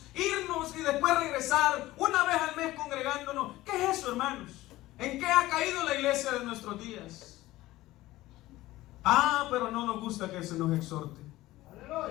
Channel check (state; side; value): quieter; right; 17.1 dB